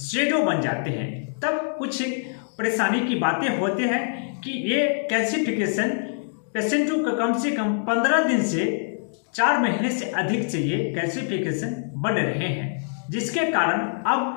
बन जाते हैं। तब कुछ परेशानी की बातें होते हैं कि ये कैल्सिफिकेशन पेशेंटों का कम से कम 15 दिन से 4 महीने से अधिक से ये कैल्सिफिकेशन बन रहे हैं, जिसके कारण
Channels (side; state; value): right; silent; digital silence